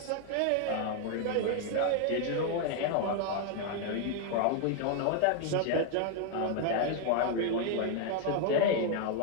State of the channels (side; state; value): both; different; correlation 0.01